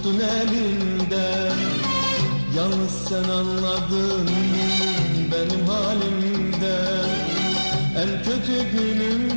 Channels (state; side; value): inverted; both; correlation -1.00